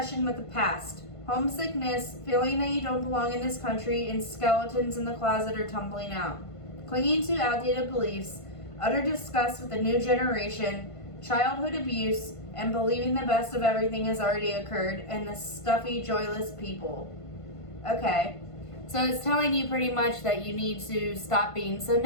with the past, homesickness, feeling that you don't belong in this country, and skeletons in the closet are tumbling out. Clinging to outdated beliefs, utter disgust with the new generation, childhood abuse, and believing the best of everything has already occurred, and the stuffy, joyless people. Okay, so it's telling you pretty much that you need to stop being so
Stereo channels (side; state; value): right; late; 1.5 ms